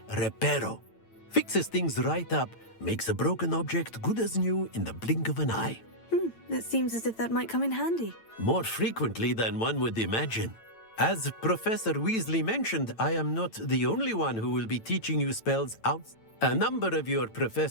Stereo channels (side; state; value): right; late; 8.9 ms